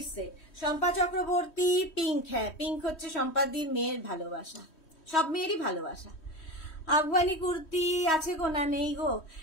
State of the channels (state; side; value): late; right; 3.1 ms